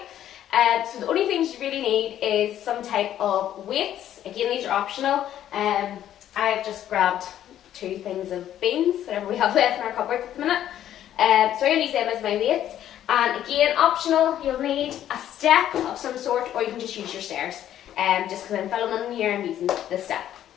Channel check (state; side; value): quieter; right; 11.4 dB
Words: So the only things you really need is some type of weights. Again, these are optional. I've just grabbed 2 things of beans, whatever we have left in our cupboards at the minute. So I'm going to use them as my weights. And again, optional, you'll need a step of some sort, or you can just use your stairs. Just because I'm filming here, I'm using the step.